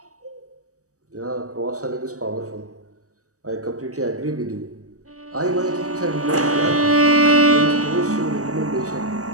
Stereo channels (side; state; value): left; late; 0.66 ms